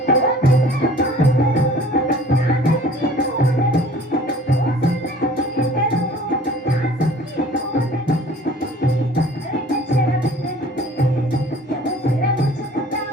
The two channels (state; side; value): normal; both; correlation 0.49